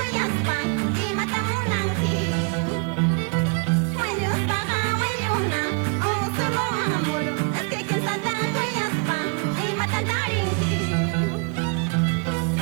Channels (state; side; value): quieter; left; 34.1 dB